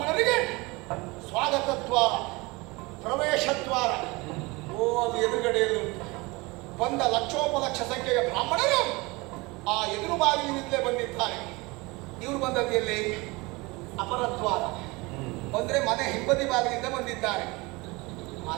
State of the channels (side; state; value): left; quieter; 24.4 dB